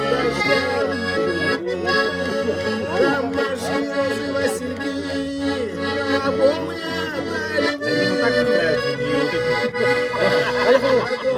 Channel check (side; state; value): both; identical; correlation 1.00